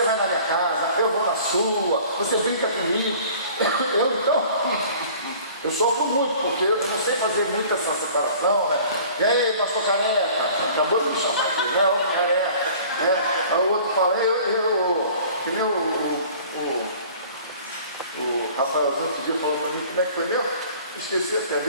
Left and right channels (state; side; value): inverted; both; correlation -0.48